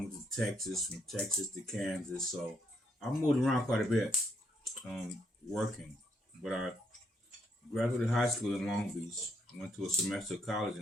to Texas, from Texas to Kansas. So I moved around quite a bit, working. But I graduated high school in Long Beach, went to a semester of college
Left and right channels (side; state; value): both; normal; correlation 0.74